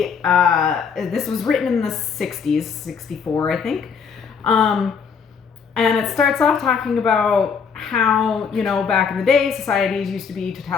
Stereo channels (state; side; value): quieter; right; 6.2 dB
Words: this was written in the 60s, 64 I think, and it starts off talking about how, back in the day societies used to be